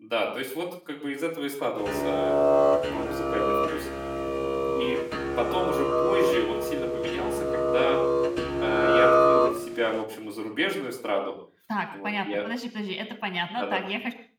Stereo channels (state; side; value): identical; both; correlation 1.00